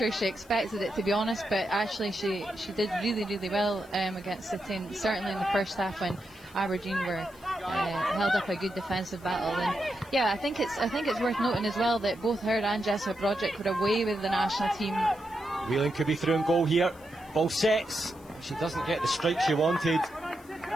she expected it, to be honest, but actually she did really well against City, and certainly in the first half when Aberdeen were held up a good defensive battle. And yeah, I think it's worth noting as well that both her and Jessica Broderick were away with the national team. Whelan could be through and goal here. Ball sets. She doesn't get the strike she wanted.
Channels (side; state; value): left; noise; hiss, 26 dB below the sound